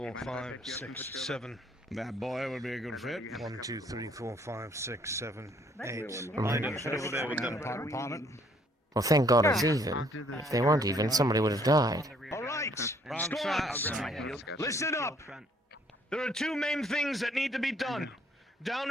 5, 6, 7. That boy would be a good fit. 1, 2, 3, 4, 5, 6, 7, 8. Line up, head over there with them. Upon it. Well, thank God it's even. If they weren't even, somebody would have died. All right, squads, listen up. There are two main things that need to be done. Down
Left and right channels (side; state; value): both; normal; correlation 0.64